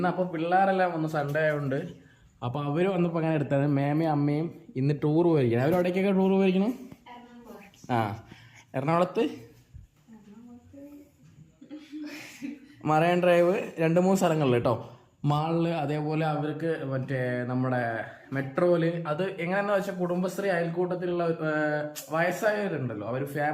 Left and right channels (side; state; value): both; identical; correlation 1.00